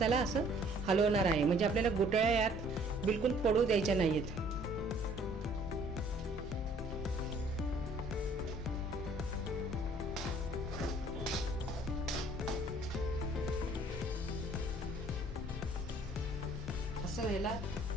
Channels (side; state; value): both; normal; correlation 0.58